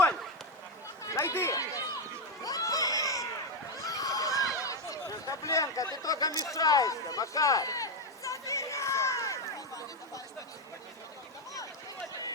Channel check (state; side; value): normal; both; correlation 0.06